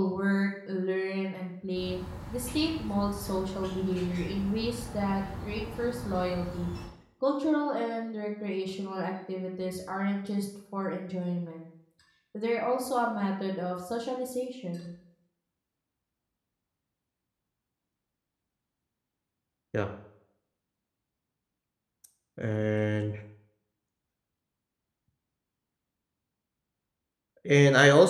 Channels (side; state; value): both; identical; correlation 1.00